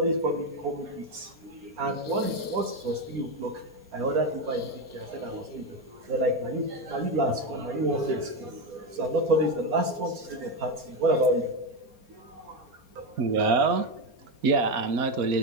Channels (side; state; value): left; late; 4.3 ms